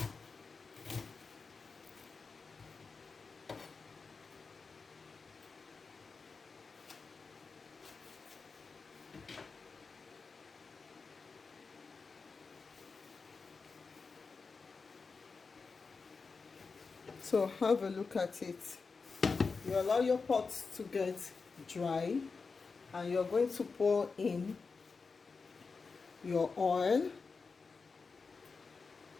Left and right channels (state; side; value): quieter; right; 4.7 dB